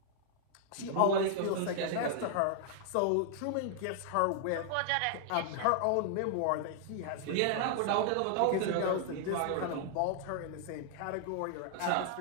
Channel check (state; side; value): different; both; correlation 0.00